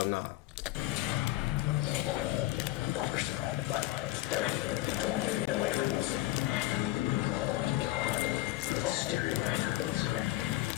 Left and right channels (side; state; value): right; quieter; 17.2 dB